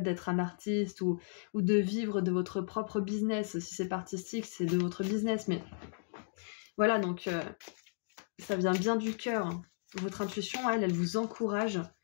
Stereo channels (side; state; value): right; silent; digital silence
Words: d'être un artiste ou de vivre de votre propre business. Si c'est pas artistique, c'est de votre business. Mais voilà, donc ça vient bien du cœur. Votre intuition, elle vous encourage